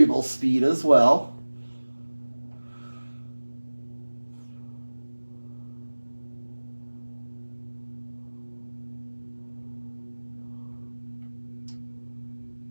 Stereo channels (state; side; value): inverted; both; correlation -1.00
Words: speed as well.